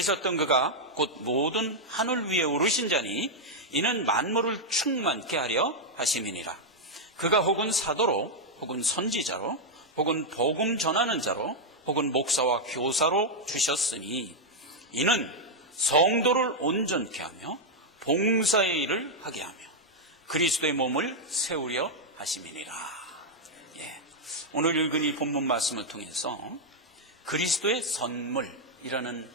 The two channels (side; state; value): both; normal; correlation -0.02